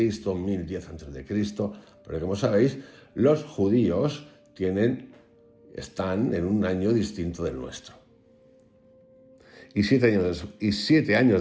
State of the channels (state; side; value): identical; both; correlation 1.00